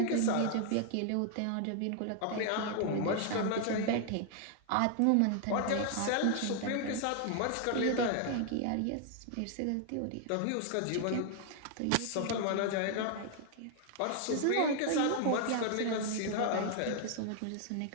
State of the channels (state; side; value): different; both; correlation 0.00